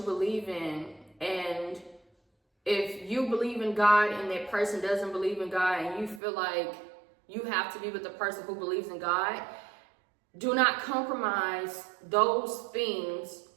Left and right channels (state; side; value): drops out; left; at 6.2 s